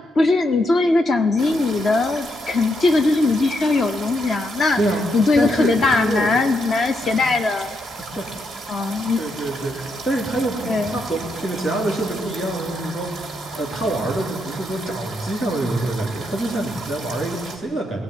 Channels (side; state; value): both; normal; correlation 0.80